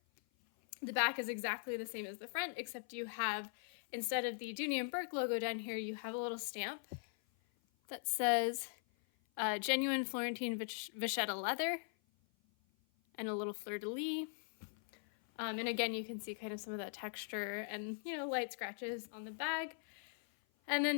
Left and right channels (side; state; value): right; silent; 51 dB below the other